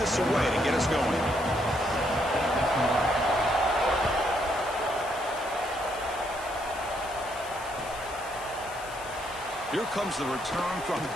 away to get us going. Here comes the return from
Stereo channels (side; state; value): left; noise; hiss, 17 dB below the sound